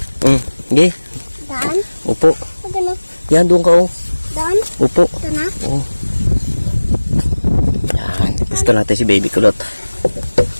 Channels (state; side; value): inverted; both; correlation -1.00